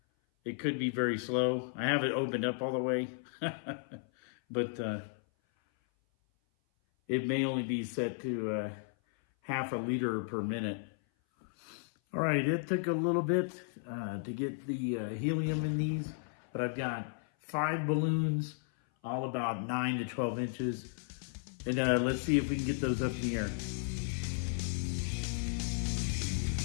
it could be very slow. I have it opened up all the way, but it may only be set to half a liter per minute. All right, it took a little bit to get the helium in these, but I've got 5 balloons, all about 9 to 12 inches. And let's see if we can get those up in the air.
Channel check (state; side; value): silent; right; 55 dB below the other